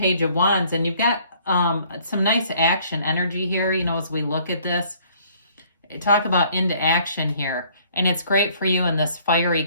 of Wands, and you've got some nice action energy here, as we look at this. Talk about into action here. And it's great for you in this fiery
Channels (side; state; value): both; inverted; correlation -0.59